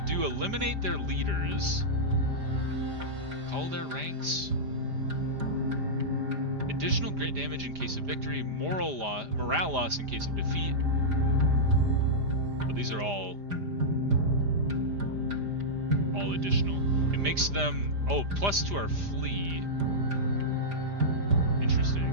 do eliminate their leaders, call their ranks. Additional grit damage in case of victory, morale loss in case of defeat. But these are all additional. It makes them... oh, plus to our flee.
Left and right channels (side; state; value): left; late; 5.0 ms